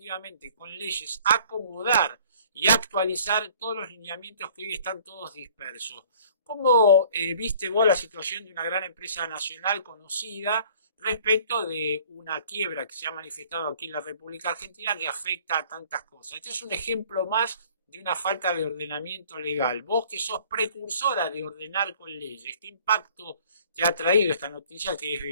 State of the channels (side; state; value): both; inverted; correlation -0.53